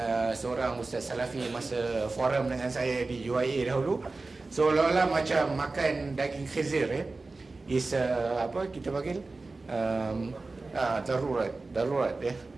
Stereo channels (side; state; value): left; quieter; 3.5 dB